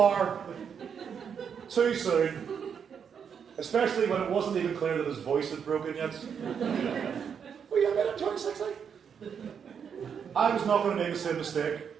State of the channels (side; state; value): left; quieter; 7.2 dB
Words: too soon, especially when it wasn't even clear that his voice had broken yet. Well, yeah, man, I'm 26, like. I was not going to make the same mistake.